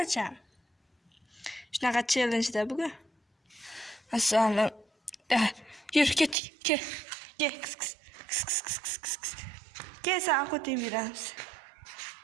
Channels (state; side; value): drops out; left; at 6.4 s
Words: Shunaqa challenge-da bugun. Assalom. Yur, ket. Kis. Kel, sen qo'ting beramiz.